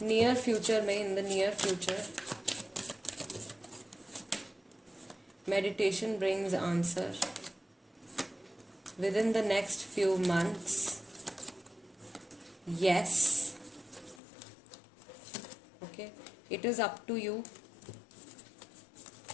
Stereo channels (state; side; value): drops out; right; at 14.2 s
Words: नियर फ्यूचर में, in the near future, meditation brings answer within the next few months, yes, okay, it is up to you